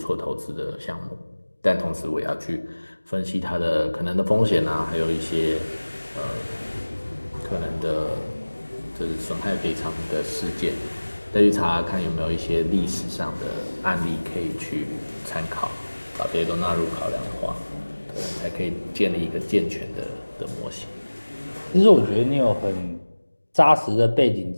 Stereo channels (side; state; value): both; inverted; correlation -1.00